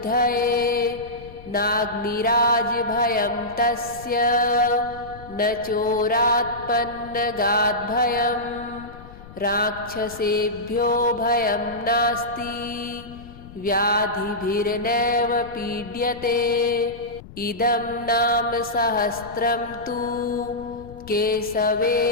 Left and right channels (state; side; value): noise; left; rumble, 18 dB below the sound